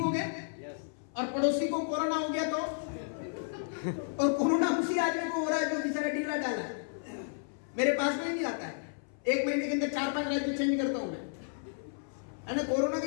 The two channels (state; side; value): silent; right; 56 dB below the other